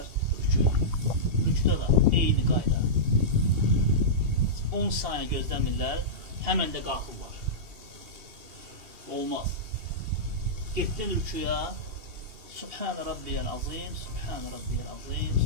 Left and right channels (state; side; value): late; left; 2.8 ms